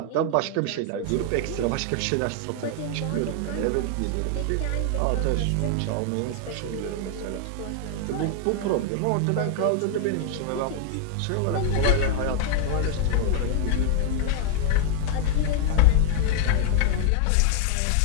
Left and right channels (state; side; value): different; both; correlation 0.00